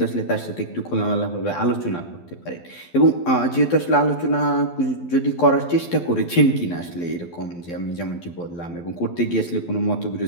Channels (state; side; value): late; right; 12 ms